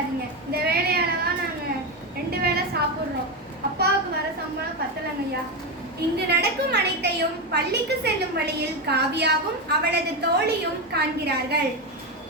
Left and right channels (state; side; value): normal; both; correlation 0.12